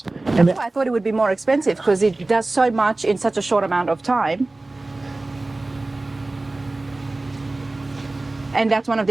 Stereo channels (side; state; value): left; quieter; 3.0 dB